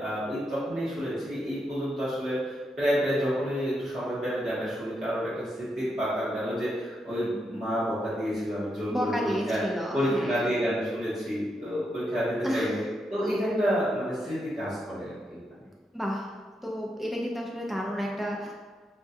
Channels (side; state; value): both; normal; correlation 0.82